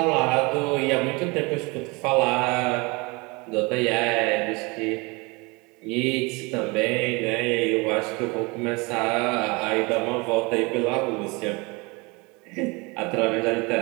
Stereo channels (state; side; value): quieter; left; 26.8 dB